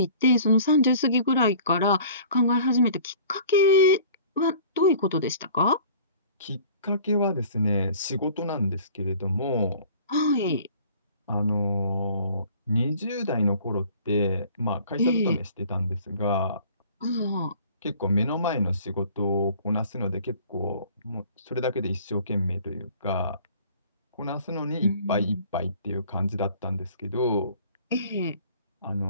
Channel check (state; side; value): inverted; both; correlation -0.49